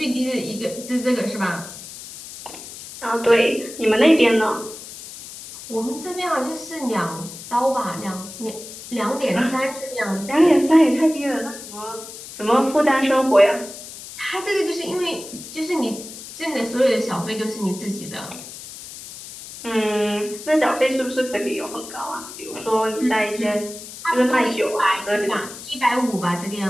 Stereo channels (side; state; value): left; noise; hiss, 13 dB below the sound